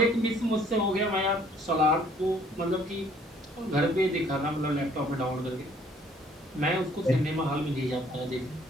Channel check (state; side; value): normal; both; correlation 0.60